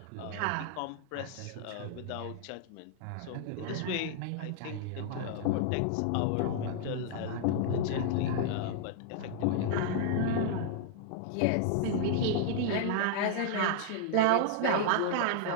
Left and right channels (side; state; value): both; different; correlation -0.01